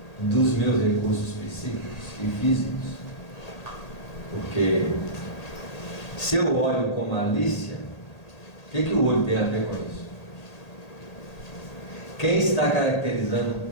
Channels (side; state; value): right; late; 1.8 ms